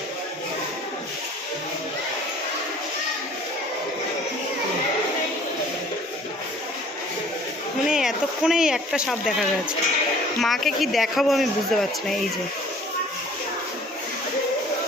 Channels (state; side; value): normal; both; correlation 0.52